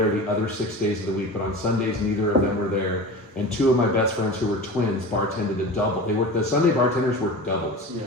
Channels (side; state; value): both; normal; correlation 0.32